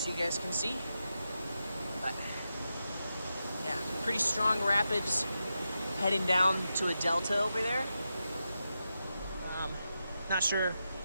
you guys can see. But yeah, pretty strong rapids heading down to a delta over there. Not sure.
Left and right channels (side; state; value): both; inverted; correlation -0.88